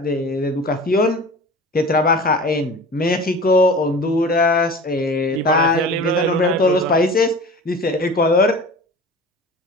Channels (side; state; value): both; normal; correlation 0.38